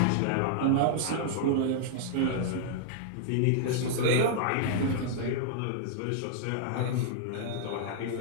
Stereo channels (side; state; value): both; different; correlation -0.01